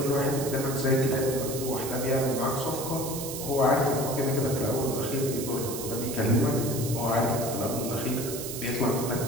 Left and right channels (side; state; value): right; noise; hiss, 7 dB below the sound